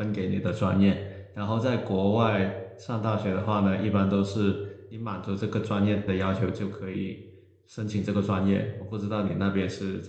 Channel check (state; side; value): identical; both; correlation 1.00